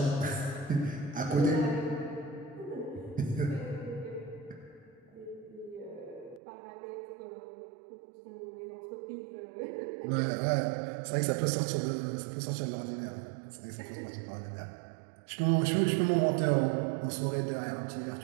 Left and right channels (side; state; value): left; drops out; at 6.4 s